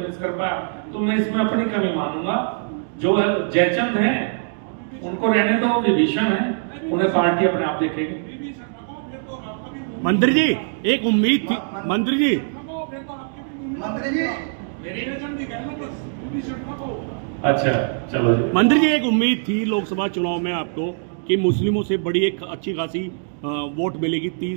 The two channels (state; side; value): silent; left; digital silence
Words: कर पाया, तो मैं इसमें अपनी कमी मानूंगा। जो जयचंद है उनको रहने दो, विभीषण है, उन्हें पार्टी अपने आप देखेगी। मंत्री जी, एक उम्मीद थी, मंत्री जी अच्छा चलो जी। मंत्री जी, एक उम्मीद थी लोकसभा चुनाव में आपको कि मुस्लिमों से बड़ी एक अच्छी खासी वोट मिलेगी,